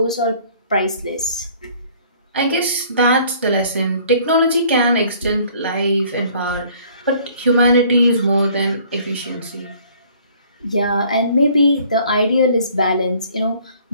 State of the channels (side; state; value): both; inverted; correlation -0.56